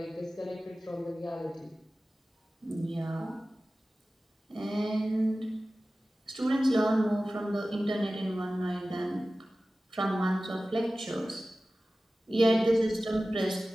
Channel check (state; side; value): normal; both; correlation 0.96